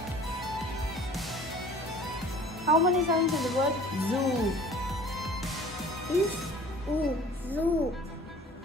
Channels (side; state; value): both; normal; correlation 0.48